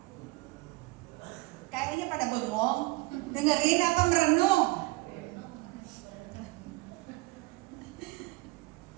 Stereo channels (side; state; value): left; quieter; 23.1 dB